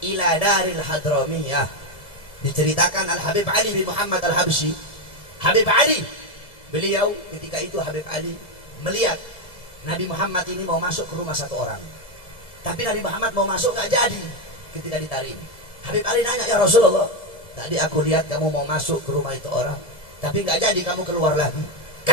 ila Daril Hadramiyah diceritakan Al-Habib Ali bin Muhammad Al-Habsyi. Habib Ali, beliau ketika itu Habib Ali melihat Nabi Muhammad ini mau masuk ke rumah satu orang, tapi Nabi Muhammad mau masuk nggak jadi. Ketika ditarik, Habib Ali nanya, ya Rasulullah, tadi aku lihat kamu mau masuk ke rumah itu orang, tapi nggak jadi, kamu keluar lagi.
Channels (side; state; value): right; late; 1.7 ms